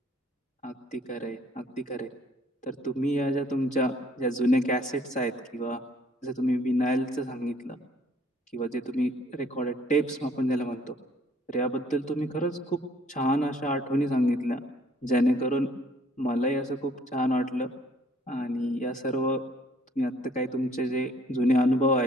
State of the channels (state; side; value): normal; both; correlation 0.60